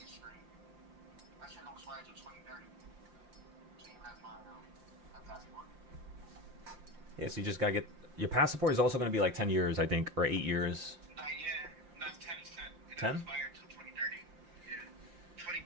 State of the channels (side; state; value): left; late; 5.7 ms